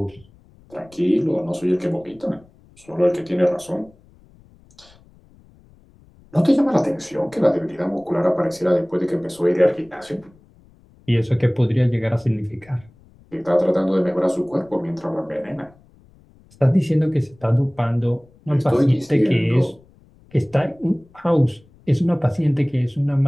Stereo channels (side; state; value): left; noise; rumble, 28 dB below the sound